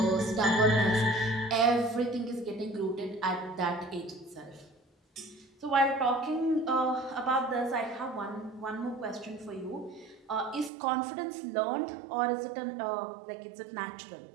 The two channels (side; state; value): left; drops out; at 10.7 s